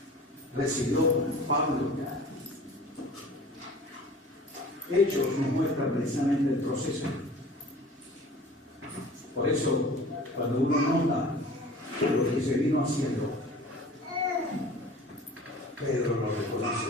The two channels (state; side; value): normal; both; correlation 0.43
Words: recibió Pablo. Hechos nos muestran precisamente el proceso. Por eso, cuando uno nota lo que se vino haciendo, Pedro lo